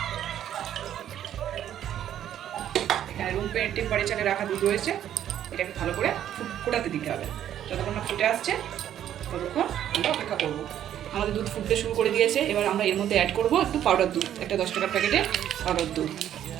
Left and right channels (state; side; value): quieter; left; 10.8 dB